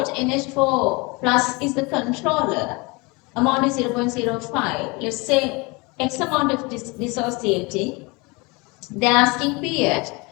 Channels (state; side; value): quieter; right; 26.8 dB